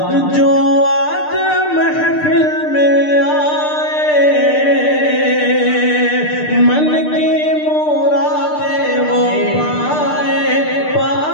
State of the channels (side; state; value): right; late; 6.7 ms